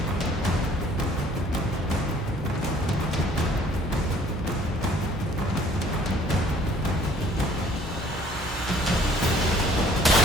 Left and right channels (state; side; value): normal; both; correlation 0.57